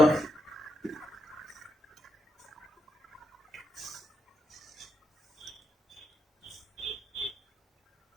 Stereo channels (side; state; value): both; normal; correlation 0.81